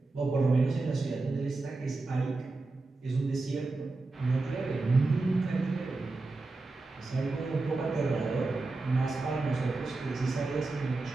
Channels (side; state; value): left; quieter; 3.4 dB